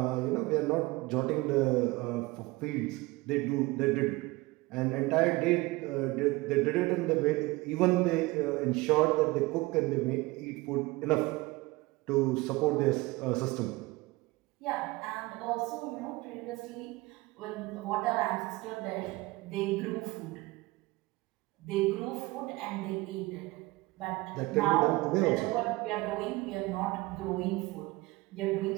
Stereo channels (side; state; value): left; quieter; 21.7 dB